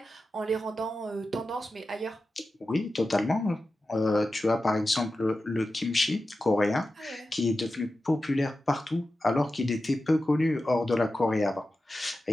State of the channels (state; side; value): normal; both; correlation 0.93